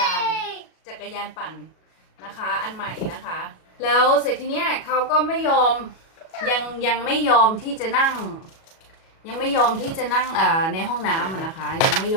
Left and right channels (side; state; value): right; late; 37 ms